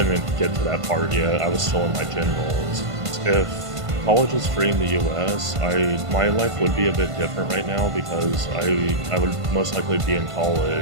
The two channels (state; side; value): late; left; 1.5 ms